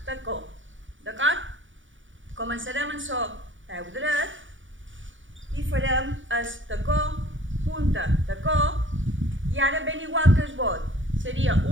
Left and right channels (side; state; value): left; late; 0.56 ms